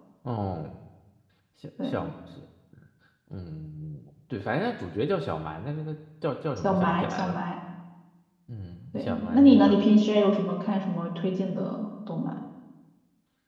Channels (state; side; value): identical; both; correlation 1.00